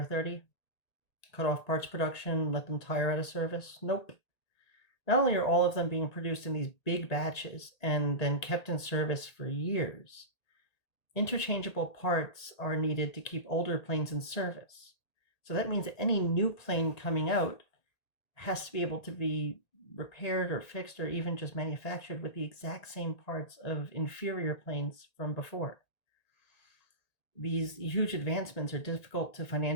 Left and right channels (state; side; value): late; right; 1.8 ms